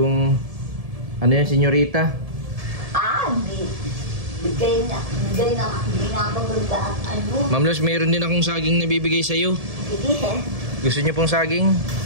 senyorita. Bigay na maganda at Ma'am Luz, mayroon din akong saging na bibigay sa'yo. Sige. Gusto niyo pong saging?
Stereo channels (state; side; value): late; left; 1.7 ms